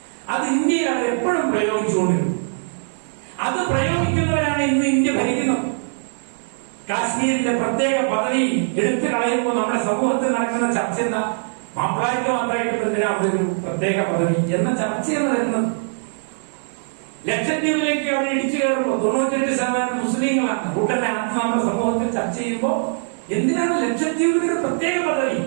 അത് ഇന്ത്യയിൽ അവർ എപ്പോഴും പ്രയോഗിച്ചുകൊണ്ടിരുന്നു. അത് പ്രയോഗിക്കുന്നവരാണ് ഇന്ന് ഇന്ത്യ ഭരിക്കുന്നത്. കാശ്മീരിന്റെ പ്രത്യേക പദവി എടുത്തു കളയുമ്പോൾ നമ്മുടെ സമൂഹത്തിൽ നടക്കുന്ന ചർച്ച എന്താ? മാപ്പിളാർക്ക് മാത്രമായിട്ട് എന്തിനാ അവിടെ ഒരു പ്രത്യേക പദവി എന്ന ചർച്ചയാണ് വരുന്നത്. ലക്ഷദ്വീപിലേക്ക് അവിടെ ഇടിച്ചു കയറുമ്പോൾ 98% മുസ്ലിങ്ങളാണ്. കൂട്ടനെ അർത്ഥം നമ്മുടെ സമൂഹത്തിൽ ചർച്ച ചെയ്യുമ്പോൾ എന്തിനാണ് ലക്ഷദ്വീപിന് ഒരു പ്രത്യേക പദവി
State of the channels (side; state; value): left; silent; digital silence